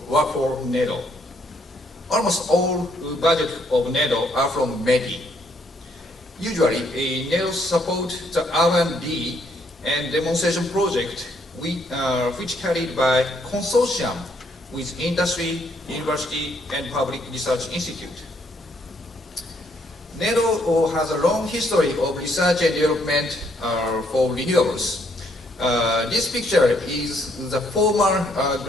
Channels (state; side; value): normal; both; correlation 0.70